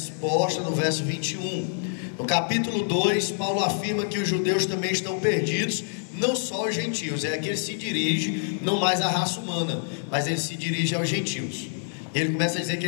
no verso 21. No capítulo 2, Paulo afirma que os judeus também estão perdidos, não só os gentios. É que ele se dirige não mais à raça humana, mas ele se dirige aos gentios. Ele começa a dizer que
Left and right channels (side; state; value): right; silent; 57 dB below the other